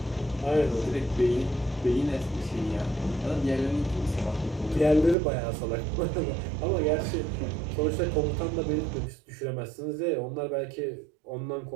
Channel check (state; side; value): drops out; left; at 5.2 s